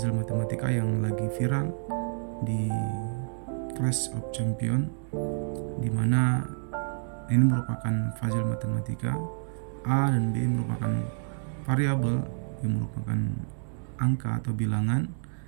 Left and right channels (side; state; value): left; silent; 59 dB below the other